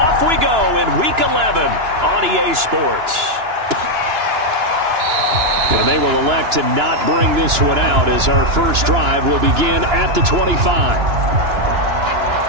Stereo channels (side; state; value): left; late; 2.9 ms